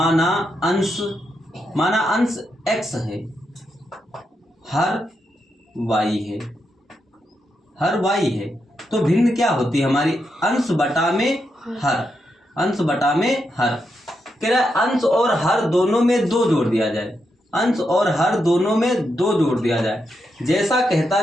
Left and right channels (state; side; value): normal; both; correlation 0.83